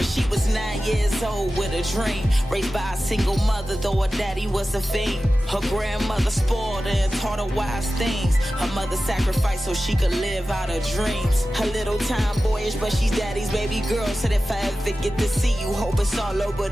She was 9 years old with a dream. Raised by a single mother, though her daddy was a fiend. Her grandmother spoiled her and taught her wise things. Her mother sacrificed so she could live out her dreams. Her little time boyish, but she's daddy's baby girl. Said if I ever get to see you, hope it's all over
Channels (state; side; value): normal; both; correlation 0.95